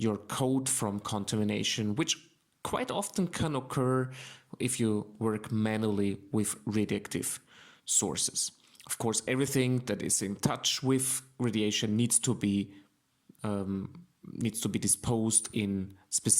coat from contamination, which quite often can occur if you work manually with radioactive sources. Of course, everything that is in touch with radiation needs to be disposed in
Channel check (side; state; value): both; identical; correlation 1.00